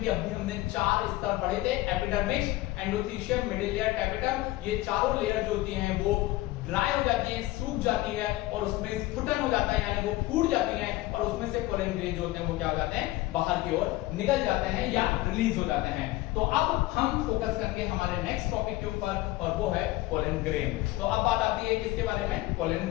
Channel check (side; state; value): right; quieter; 17.9 dB